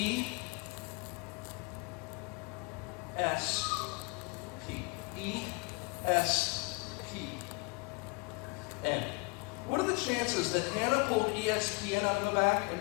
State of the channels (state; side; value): quieter; right; 29.1 dB